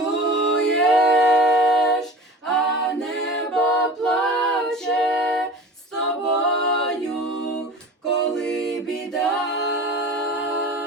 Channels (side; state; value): both; normal; correlation 0.38